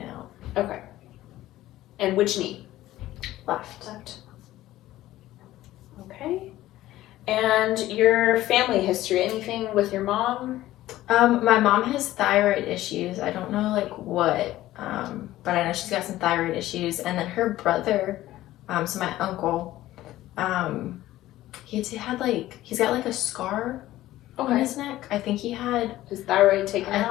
out. Okay. And which knee? Left. Okay. And your family history, anything with your mom? My mom has thyroid issues. I don't know like what, but I know she's got some thyroid issues. And then her brother, so my uncle, he's got like a scar on his neck. I think he had his thyroid taken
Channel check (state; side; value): quieter; right; 15.2 dB